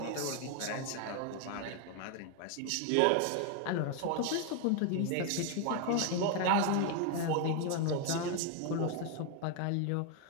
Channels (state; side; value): different; both; correlation 0.01